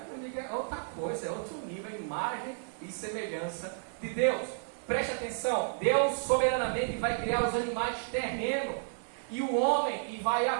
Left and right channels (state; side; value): silent; left; 56 dB below the other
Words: outra coisa, é outro nível, a imagem e semelhança de Deus. Preste atenção, Deus soberanamente vai criar os animais terrenos e o homem, e vai